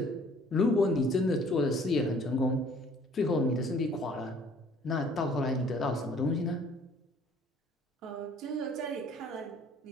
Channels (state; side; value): normal; both; correlation 0.56